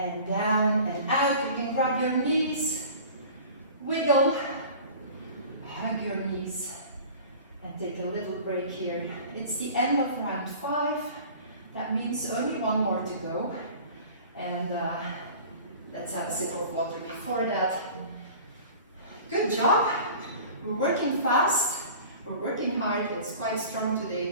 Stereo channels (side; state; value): both; inverted; correlation -0.42